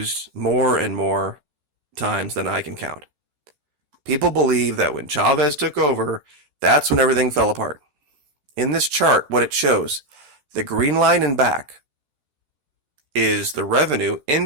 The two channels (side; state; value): left; late; 14 ms